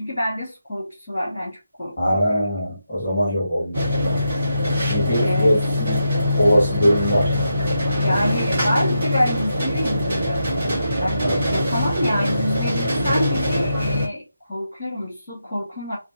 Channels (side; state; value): both; inverted; correlation -0.84